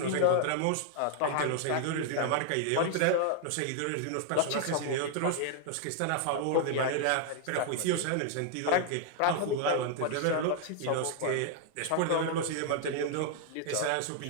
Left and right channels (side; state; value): both; different; correlation 0.00